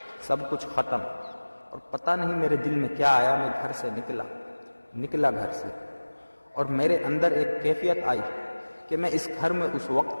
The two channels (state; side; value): inverted; both; correlation -1.00